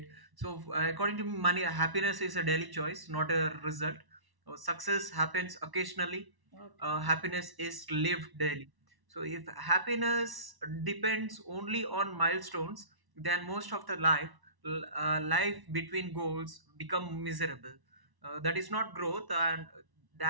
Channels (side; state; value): left; late; 1.1 ms